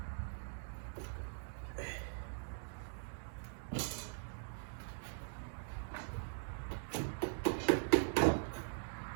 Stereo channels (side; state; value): left; silent; digital silence